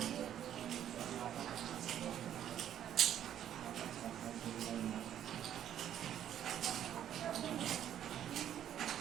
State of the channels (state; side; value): quieter; left; 10.5 dB